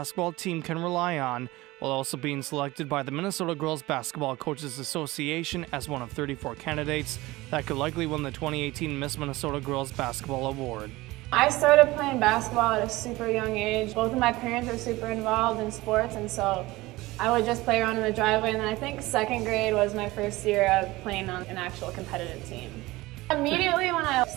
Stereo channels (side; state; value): left; quieter; 19.8 dB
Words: team can rely on, while also being selected by the Minnesota Girls Basketball Coaches Association as one of 34 candidates that could likely win the 2018 Miss Minnesota Girls Basketball Award. I started playing basketball at a super young age. Both of my parents were super involved in sports, and so I would just play around in the driveway, and then I think second grade was my first year of playing on an actual competitive team. Immediately when I